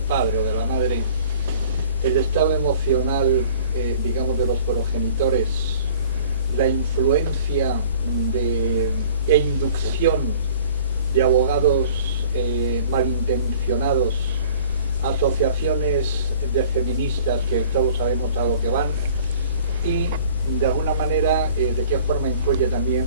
o de la madre, el estado emocional, digamos, de los progenitores, la influencia e inducción de abogados malintencionados, asociaciones de feministas que todos sabemos a lo que van, y de alguna manera de qué forma influye también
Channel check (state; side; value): inverted; both; correlation -0.49